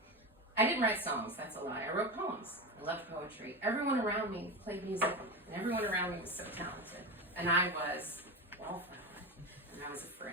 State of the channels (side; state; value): both; normal; correlation 0.20